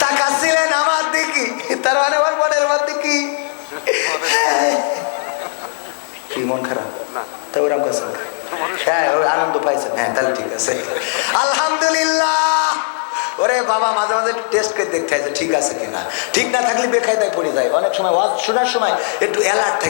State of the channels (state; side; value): silent; right; 68 dB below the other